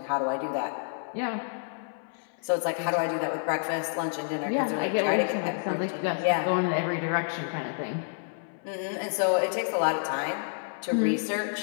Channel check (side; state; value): right; silent; 59 dB below the other